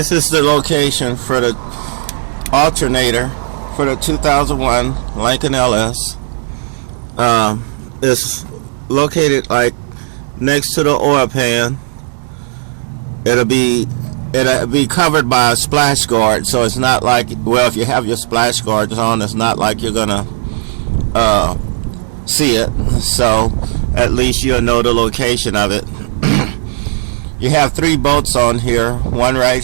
is the location for the alternator for the 2001 Lincoln LS. It's located like next to the oil pan. It'll be covered by a splash guard, so it's not like, well, if you have your splash guards on, it's not like you're gonna see it. So at least you'll know the location of it. You have 3 bolts on here, one right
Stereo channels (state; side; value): silent; left; digital silence